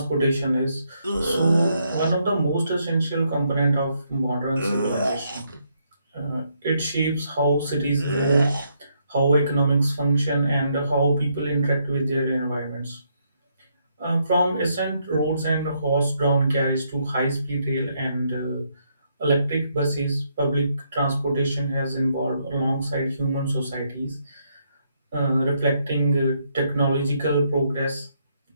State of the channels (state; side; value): inverted; both; correlation -0.75